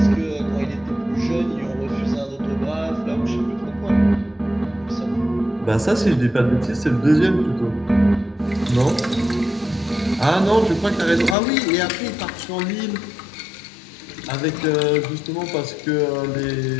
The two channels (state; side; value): drops out; right; at 11.4 s